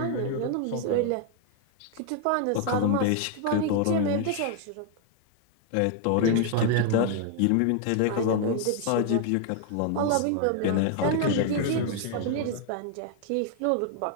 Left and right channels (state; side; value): different; both; correlation 0.00